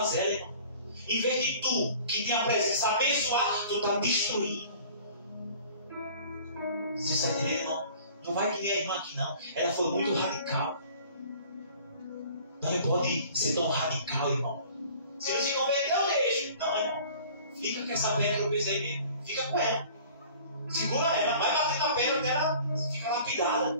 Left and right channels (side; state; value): both; inverted; correlation -0.48